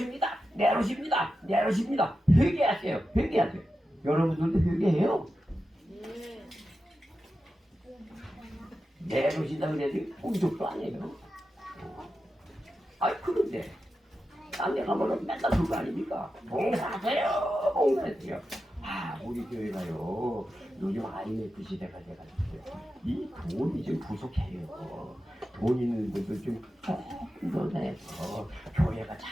내려오십니다. 회개하세요. 여러분들도 회개해요. 내려오신다 그래도 꿈쩍도 아니에요. 그런데 딴 데 가면은 맨날 그거 아닙니까? 봉사하세요. 우리 교회가요 요즘 IMF 시대가 돼가지고 이 돈이 좀 부족해요. 돈 있는 분들 좀 더 교회가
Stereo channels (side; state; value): both; normal; correlation 0.91